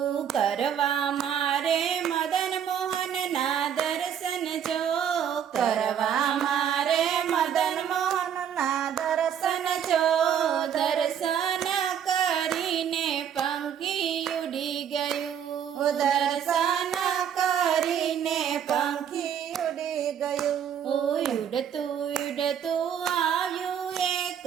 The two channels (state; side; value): quieter; left; 8.7 dB